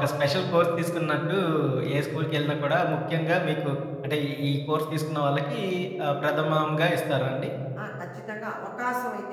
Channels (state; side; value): identical; both; correlation 1.00